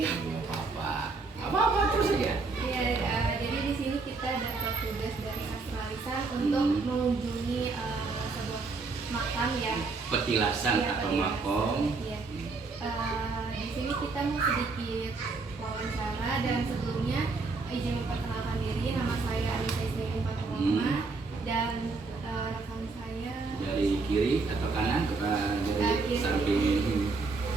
Apa terus aja. Iya, jadi di sini kita dapat tugas dari Astralisan untuk mengunjungi sebuah makam ya. Petilasan Iya, atau petilasan. makom. Iya. Di sini kita mau sedikit wawancara dan sebelumnya izin memperkenalkan diri. Nama saya Anissa Ismail Faturoma dan rekan saya Dari kiri atau kanan ke dari kiri. samping ini.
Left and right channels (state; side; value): quieter; left; 4.0 dB